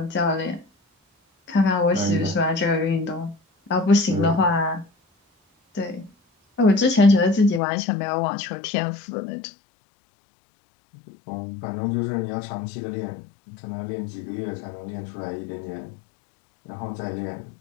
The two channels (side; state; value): right; drops out; at 7.6 s